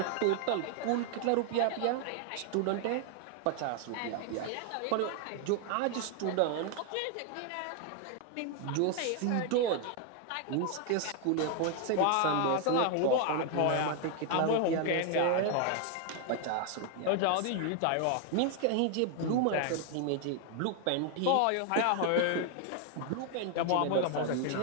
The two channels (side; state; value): both; different; correlation 0.00